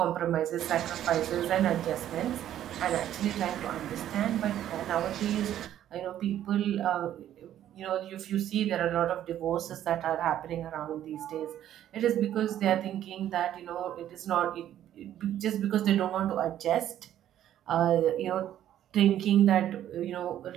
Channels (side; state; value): left; quieter; 11.5 dB